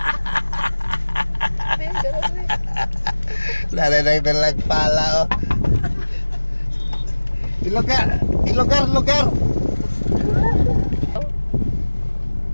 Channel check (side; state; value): both; inverted; correlation -1.00